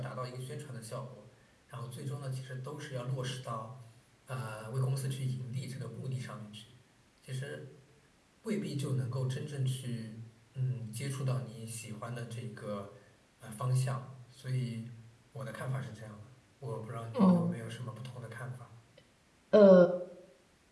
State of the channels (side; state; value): both; identical; correlation 1.00